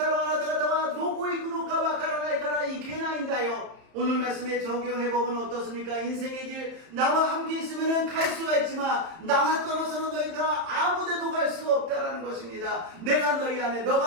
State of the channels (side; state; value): left; late; 31 ms